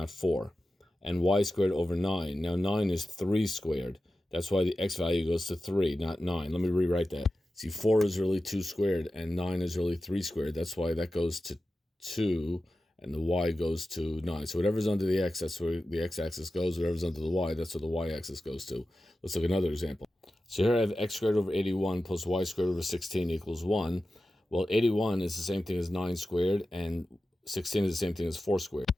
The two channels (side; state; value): both; normal; correlation 0.93